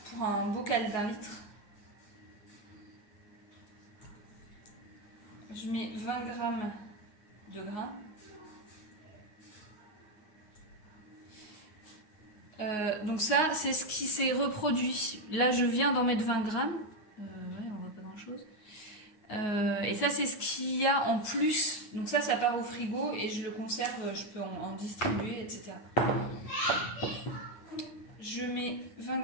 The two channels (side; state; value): right; late; 9.5 ms